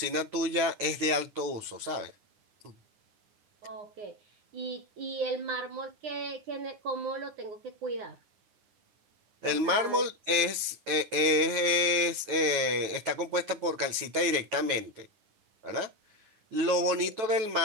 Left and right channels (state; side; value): late; left; 9.2 ms